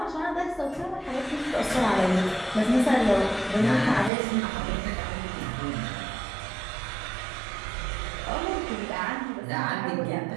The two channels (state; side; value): drops out; left; at 4.1 s